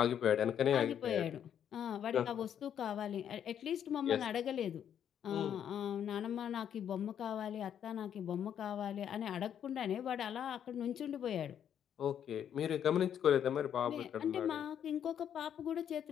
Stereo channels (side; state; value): right; quieter; 9.2 dB